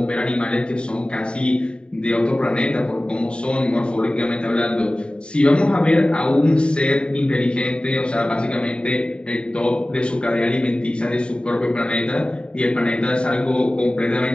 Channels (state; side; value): late; right; 0.051 ms